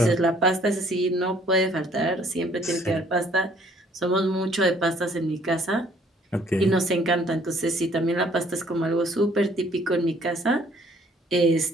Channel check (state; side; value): normal; both; correlation 0.61